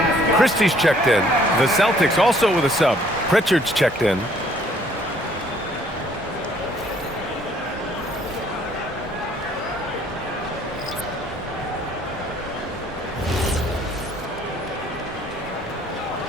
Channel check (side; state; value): both; normal; correlation 0.61